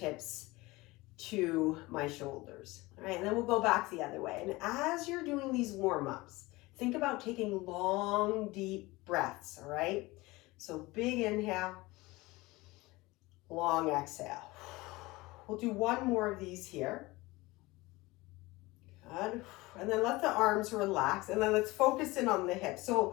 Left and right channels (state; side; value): quieter; right; 21.3 dB